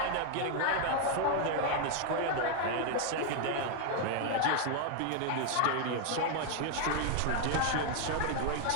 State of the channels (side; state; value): both; different; correlation 0.00